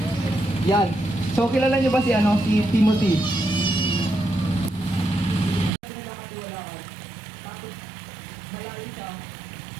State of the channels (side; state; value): left; drops out; at 5.7 s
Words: Yan. So kilala niyo ba si Timothy?